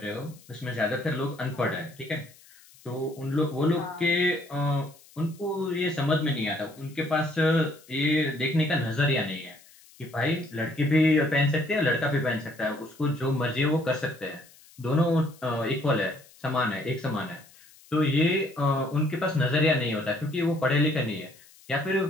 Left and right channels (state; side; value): noise; left; hiss, 25 dB below the sound